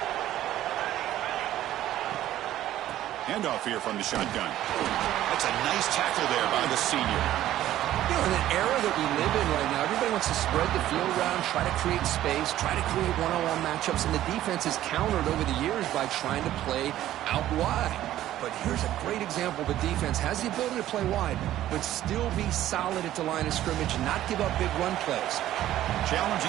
Handoff here from the shotgun. That's a nice tackle there by the senior. You know, in an era that we live in right now, everybody wants to spread the field around, try to create space, try to create one-on-one matchups, and the defense is countered over the years by trying to play out wide. But here's a great example. The defense has the ability to play wide, but still be solid at the line of scrimmage and not give up big run plays.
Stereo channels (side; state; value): left; quieter; 13.3 dB